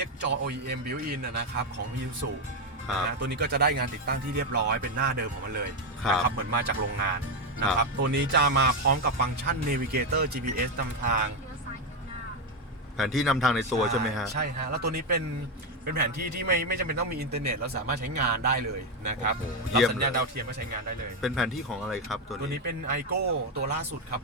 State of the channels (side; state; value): both; normal; correlation 0.07